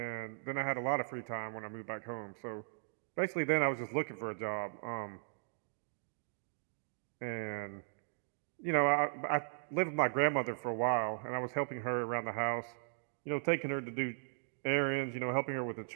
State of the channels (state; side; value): silent; left; digital silence